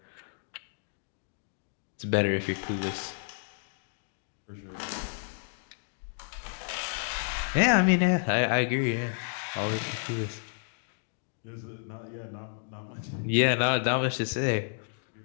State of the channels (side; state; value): right; silent; digital silence